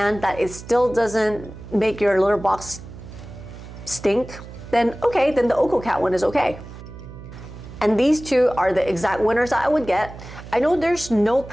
that it still doesn't make your litter box stink, then okay, then the OkoCat one is okay. And these two are the exact winners that I would get. I know there's no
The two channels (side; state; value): right; noise; hum, 15 dB below the sound